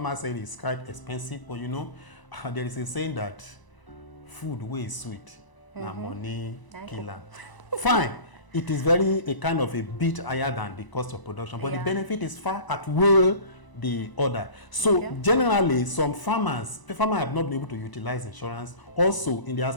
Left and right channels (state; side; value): late; right; 1.0 ms